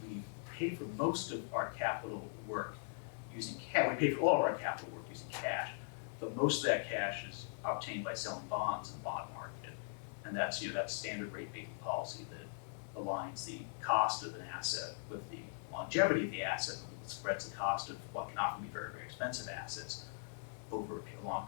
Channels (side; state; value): right; silent; digital silence